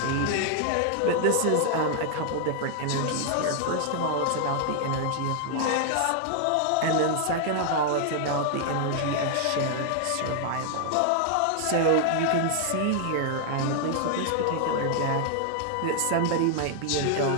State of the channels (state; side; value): different; both; correlation 0.00